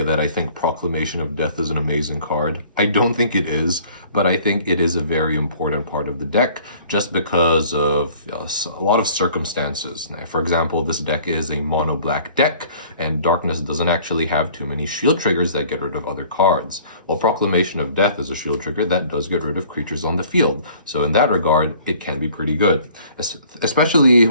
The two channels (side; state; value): both; inverted; correlation -0.53